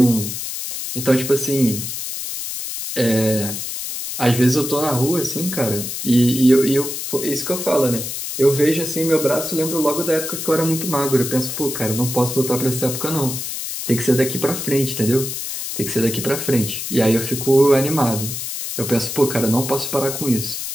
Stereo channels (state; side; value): noise; left; hiss, 5 dB below the sound